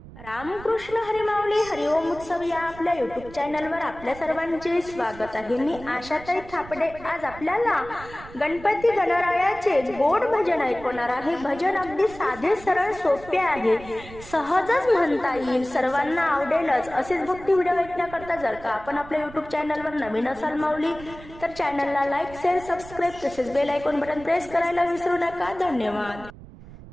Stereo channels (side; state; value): right; noise; rumble, 17 dB below the sound